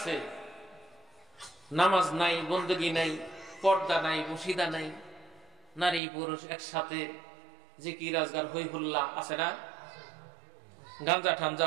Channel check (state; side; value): drops out; left; at 6.0 s